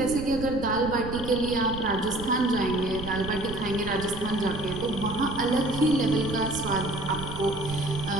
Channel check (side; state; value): right; noise; rumble, 10 dB below the sound